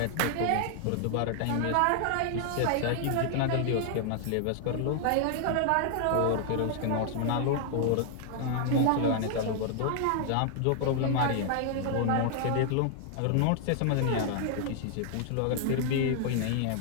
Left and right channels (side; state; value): both; different; correlation 0.00